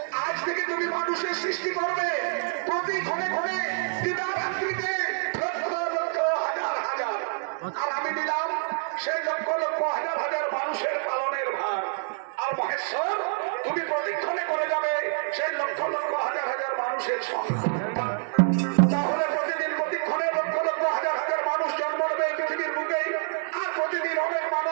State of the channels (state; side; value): silent; left; 60 dB below the other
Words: আজ থেকে তুমি মানুষের সৃষ্টি করবে প্রতি ক্ষণে ক্ষণে দিবারাত্রিতে লক্ষ লক্ষ হাজার হাজার। আর আমি দিলাম সেই লক্ষ লক্ষ হাজার হাজার মানুষের পালনের ভার। আর মহেশ্বর, তুমি প্রতিক্ষণে করে যাবে সেই লক্ষ লক্ষ হাজার হাজার মানুষের সঙ্গে। তাহলে প্রতিদিন প্রতিক্ষণে লক্ষ লক্ষ হাজার হাজার মানুষ জন্ম নেবে এই পৃথিবীর বুকেই। আর প্রতিদিন অনেক